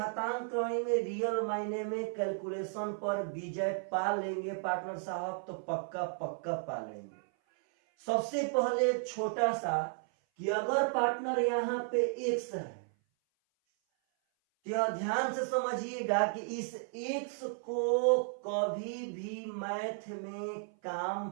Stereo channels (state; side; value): silent; left; 55 dB below the other